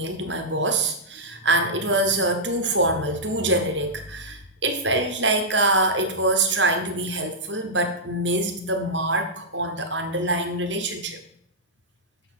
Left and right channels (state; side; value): normal; both; correlation -0.11